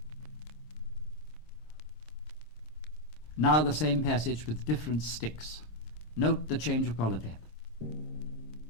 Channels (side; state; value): right; late; 26 ms